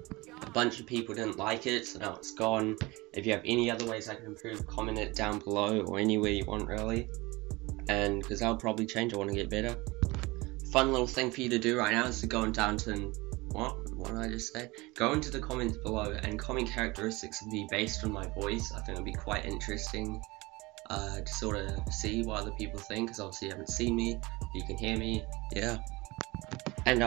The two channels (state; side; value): quieter; left; 22.7 dB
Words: A bunch of people didn't like it, so now it's gone. If you have any other ways I can improve, comment it down below or anywhere you want really. And because I'll probably change, I want to get better. Fun little thing for you to do right now is to go down to, what did I just say? Go into the comments below and comment characteristics of me based on my voice. I think it'll be quite interesting to sort of see what other people think, because obviously you haven't seen me, you can hear me, yeah. And I